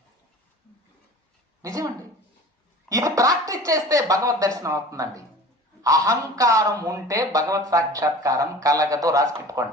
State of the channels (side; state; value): both; normal; correlation 0.41